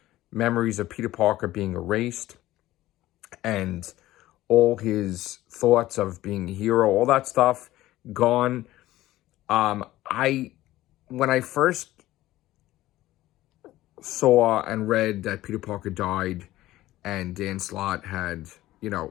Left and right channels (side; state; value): right; quieter; 15.8 dB